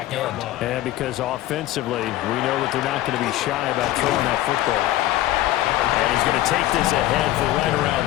end. And because offensively, we know that they're not going to be shy about throwing that football. And he's going to take this ahead for right around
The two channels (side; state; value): right; quieter; 14.9 dB